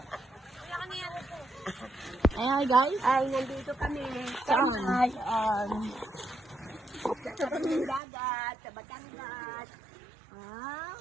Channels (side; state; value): left; drops out; at 8.0 s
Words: Ayan guys. Ay, nandito kami. Saan? Sa dagat, sa Batangas. Ah.